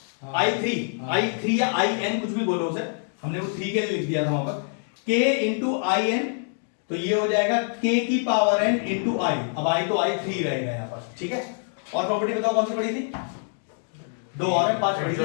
i3 या in कुछ भी बोलो उसे, हमने वो 3 के लिए लिख दिया था वहां पर, k इंटू in, तो ये हो जाएगा k की पावर n इंटू i। अब i तो i3 रहेगा यहां पर। ठीक है, और प्रॉपर्टी बताओ कौन सी पढ़ी थी? दो और है, 5 पढ़ी थी।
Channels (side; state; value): right; silent; 62 dB below the other